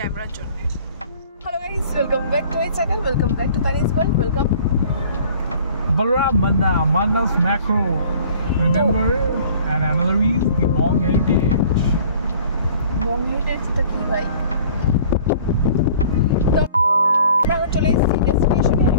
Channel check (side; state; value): both; inverted; correlation -0.50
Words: জন্য। Hello guys, welcome back to my channel, welcome back to Tanis world, welcome Balram Manna's Macro. Remember, and another is the Bong Heritage. Bong Heritage the key ভাই। তো আমরা চলে এসেছি ডেস্টিনেশনে,